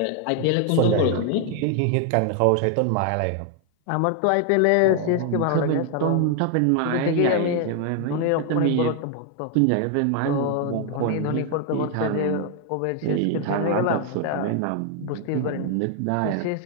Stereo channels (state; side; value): different; both; correlation 0.00